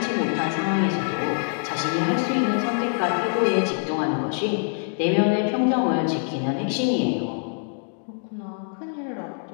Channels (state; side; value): silent; right; 62 dB below the other